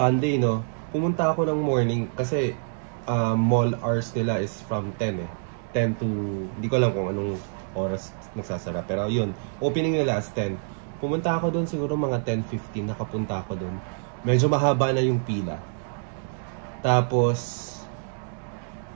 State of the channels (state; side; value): silent; left; digital silence